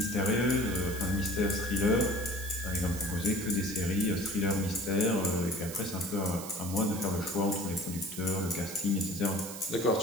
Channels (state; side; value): noise; right; hiss, 11 dB below the sound